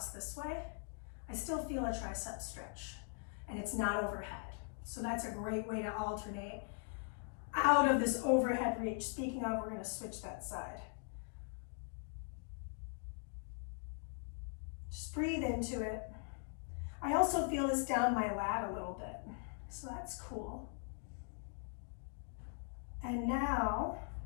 this way, I still feel a tricep stretch and it's not overhead. So that's a great way to alternate out of this overhead reach. Speaking of, we're going to switch that side. Just breathe into it. I also feel this down my lat a little bit, so that's cool. And now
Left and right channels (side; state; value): right; silent; 50 dB below the other